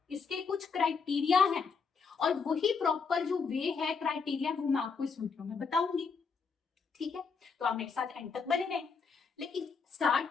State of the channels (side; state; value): right; quieter; 5.4 dB